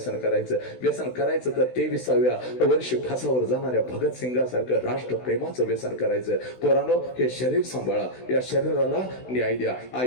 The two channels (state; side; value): late; right; 16 ms